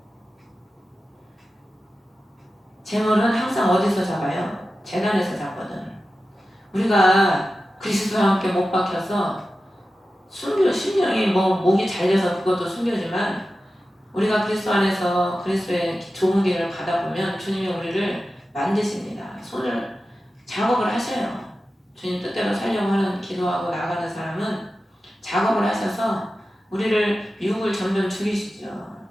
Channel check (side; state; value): both; normal; correlation 0.93